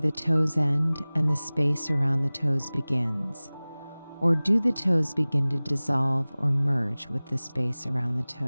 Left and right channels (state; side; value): inverted; both; correlation -0.99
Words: toes end and the space around the toes begins. Or do the toes begin to dissolve or merge with the space around the